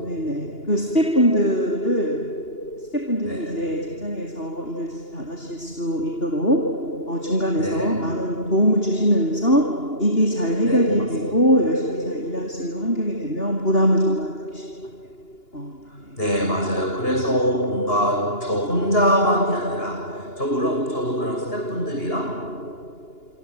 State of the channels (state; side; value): late; right; 2.9 ms